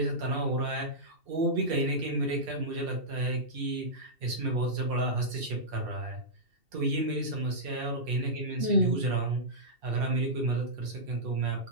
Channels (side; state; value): left; late; 2.7 ms